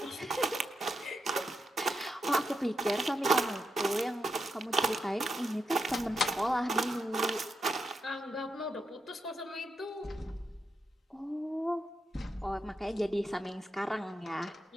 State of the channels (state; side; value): normal; both; correlation 0.84